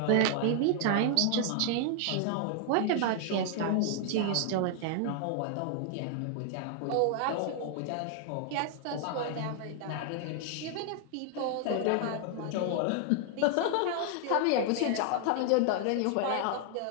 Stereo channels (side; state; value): both; different; correlation 0.00